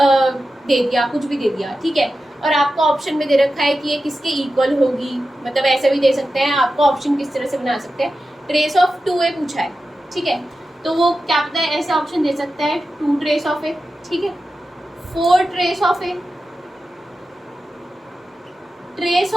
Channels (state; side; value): normal; both; correlation 0.92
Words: दे दिया, कुछ भी दे दिया, ठीक है, और आपको ऑप्शन में दे रखा है कि ये किसके इक्वल होगी, मतलब ऐसे भी दे सकते हैं, आपको ऑप्शन किस तरह से बना सकते हैं। ट्रेस ऑफ 2a पूछा है, ठीक है, तो वो क्या पता है ऐसे ऑप्शन दे सकता है 2 ट्रेस ऑफ a, ठीक है, 4 trace of a, trace